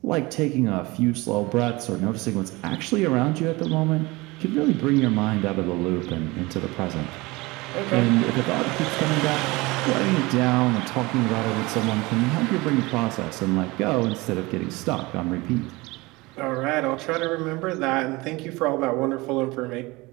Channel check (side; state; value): left; quieter; 22.6 dB